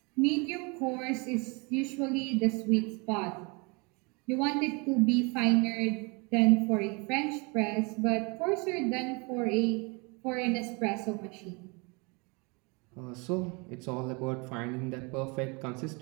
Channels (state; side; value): quieter; left; 30.1 dB